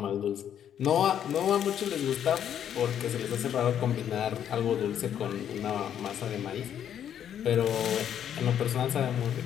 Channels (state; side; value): quieter; right; 9.6 dB